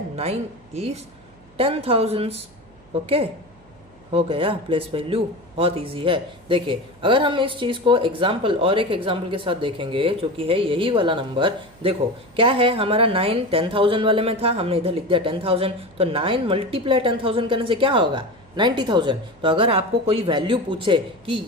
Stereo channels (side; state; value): right; noise; hum, 29 dB below the sound